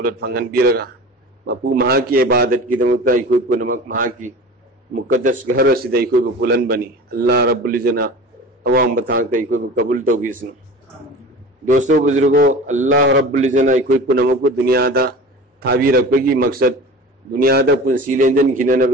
فنگن بیرگا مپو مہا کی عبادت کی دمتا کوئی کو نمک مہا کی مقدس گھر سیدھا کوئی کو بلند بنی اللہ رب العزت عوام بتاتا کوئی کو قبول تو کسن دوستو بزرگو اللہ رب العزت کوئی کو نمک کو دنیا دا تھاوی رکھے مقصد دنیا دا پنسی لینجن کھینا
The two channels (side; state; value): both; normal; correlation 0.37